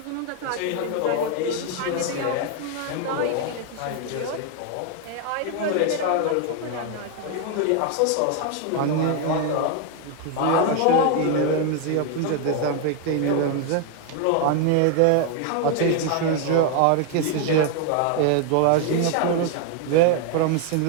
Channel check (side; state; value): both; different; correlation 0.01